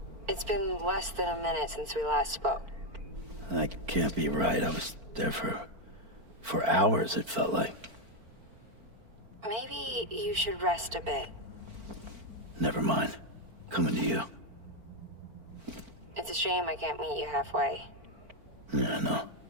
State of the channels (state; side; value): late; left; 4.5 ms